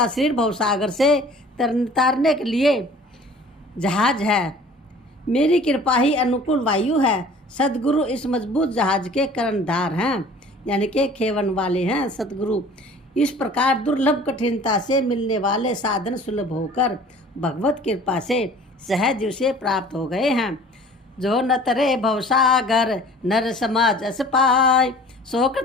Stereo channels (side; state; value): both; normal; correlation 0.48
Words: शरीर भवसागर से तारने के लिए जहाज है। मेरी कृपा ही अनुकूल वायु है। सदगुरु इस मजबूत जहाज के कर्णधार हैं, यानी कि खेवन वाले हैं सदगुरु। इस प्रकार दुर्लभ कठिनता से मिलने वाले साधन सुलभ होकर भगवत कृपा से सहज उसे प्राप्त हो गए हैं। जो न तरे भवसागर नर समाज अस पाय,